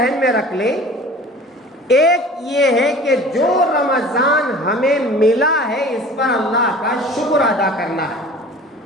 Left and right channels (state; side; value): normal; both; correlation 0.43